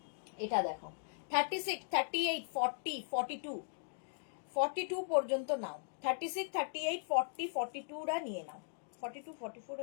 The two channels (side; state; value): right; silent; digital silence